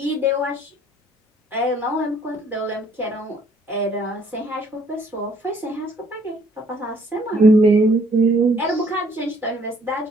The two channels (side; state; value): both; normal; correlation 0.61